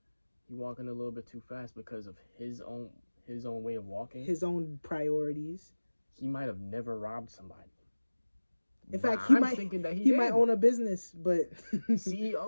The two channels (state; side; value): inverted; both; correlation -1.00